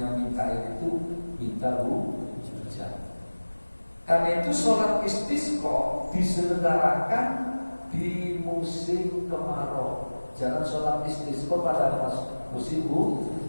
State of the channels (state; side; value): inverted; both; correlation -1.00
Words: minta air itu minta hujan. Karena itu sholat istisqa diselenggarakan di musim kemarau. Jangan sholat istisqa pada musim